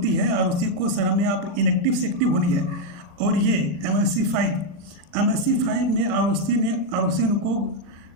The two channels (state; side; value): late; left; 39 ms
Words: है ROC को सर हमें आप इनएक्टिव से एक्टिव होनी है। और ये MSc 5 में ROC उनको